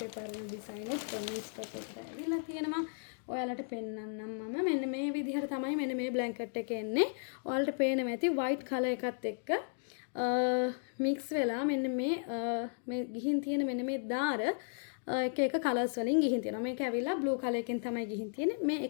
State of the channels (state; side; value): silent; right; digital silence